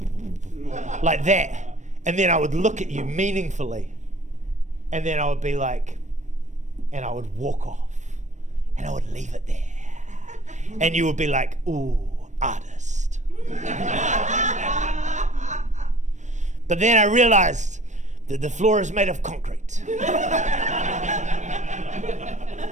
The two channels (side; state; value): left; late; 0.35 ms